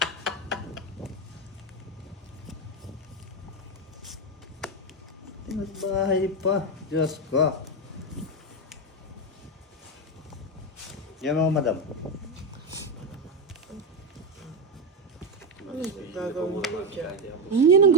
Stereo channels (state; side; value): normal; both; correlation 0.10